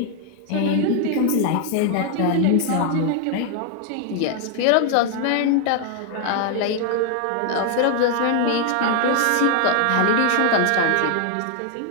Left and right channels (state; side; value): different; both; correlation 0.00